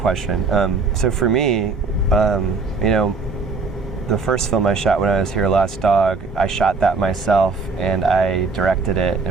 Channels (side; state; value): left; quieter; 4.2 dB